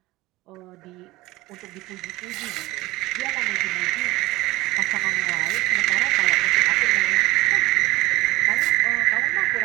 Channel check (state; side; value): quieter; left; 19.3 dB